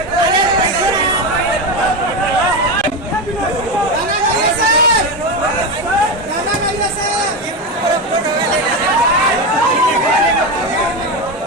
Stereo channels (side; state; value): both; normal; correlation 0.15